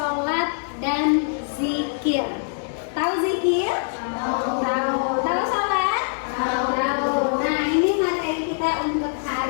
dan zikir. Tahu zikir? Tahu. Tahu sholat? Tahu. Nah, ini materi kita untuk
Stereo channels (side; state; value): right; silent; digital silence